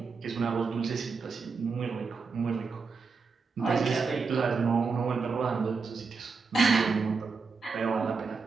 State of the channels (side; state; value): left; quieter; 4.8 dB